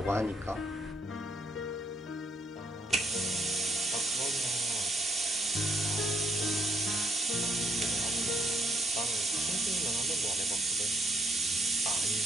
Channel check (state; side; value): normal; both; correlation 0.72